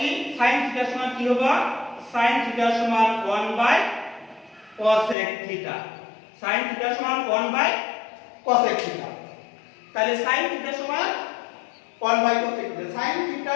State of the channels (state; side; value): drops out; right; at 5.2 s